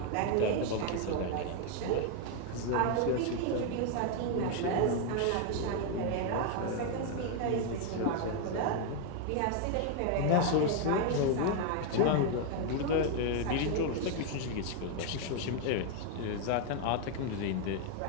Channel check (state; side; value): different; both; correlation 0.00